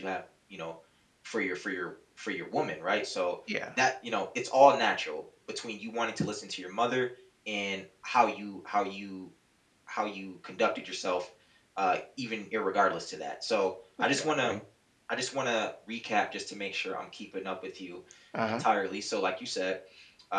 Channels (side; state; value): both; identical; correlation 1.00